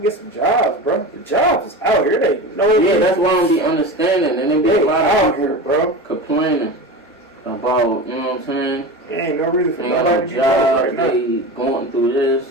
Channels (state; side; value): normal; both; correlation 0.28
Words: some jobs, bro. The jobs is out here. They know. Yeah, that's why I don't be understanding. And then be a lot of people here, bro, complaining about, you know what I'm saying? There ain't no reason for they nobody to be job, right now. They going through